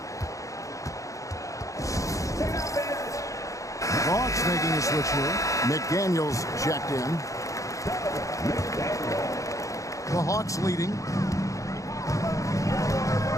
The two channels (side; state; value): right; late; 0.16 ms